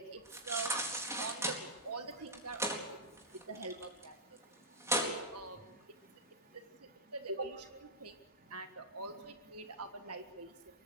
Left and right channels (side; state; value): both; normal; correlation -0.09